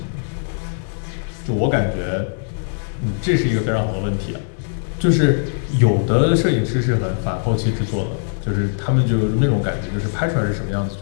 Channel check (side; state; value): right; silent; 65 dB below the other